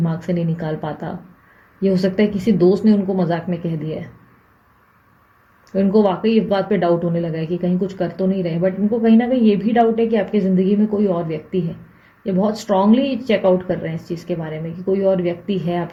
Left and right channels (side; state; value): both; identical; correlation 1.00